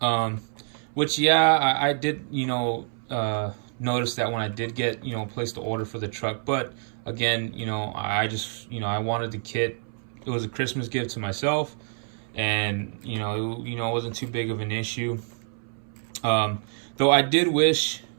Which, yeah, I did, you know, notice that when I did get, you know, placed the order for the truck. But again, you know, I just, you know, I wanted the kit. It was a Christmas gift to myself, and you know, it wasn't too big of an issue. Though I did wish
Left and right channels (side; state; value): left; silent; 60 dB below the other